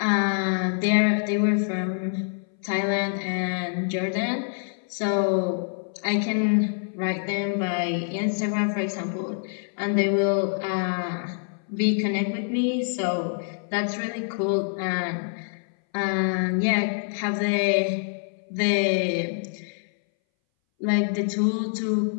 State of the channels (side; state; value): right; silent; 60 dB below the other